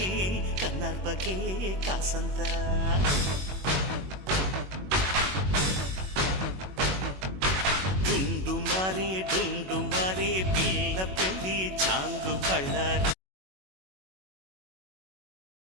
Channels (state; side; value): late; left; 21 ms